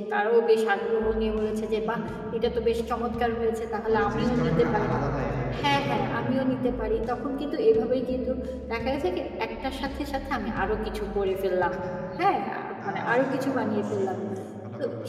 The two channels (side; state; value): both; identical; correlation 1.00